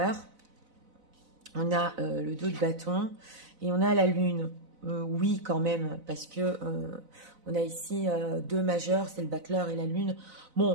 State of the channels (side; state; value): left; late; 4.0 ms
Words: on a le 2 de bâton et on a la lune. Oui, quand même, parce que on a ici 2 majeurs, c'est le battleur et la lune.